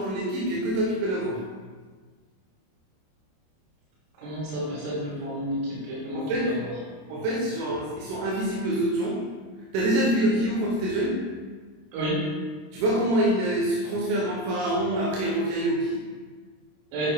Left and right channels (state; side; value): late; left; 26 ms